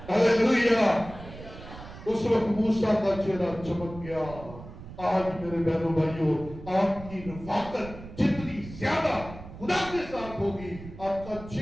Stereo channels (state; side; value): noise; right; rumble, 14 dB below the sound